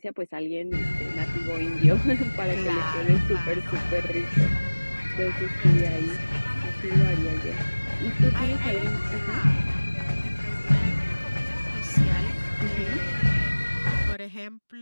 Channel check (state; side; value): inverted; both; correlation -1.00